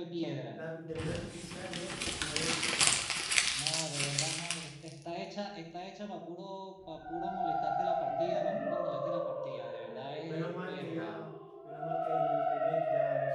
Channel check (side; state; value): both; identical; correlation 1.00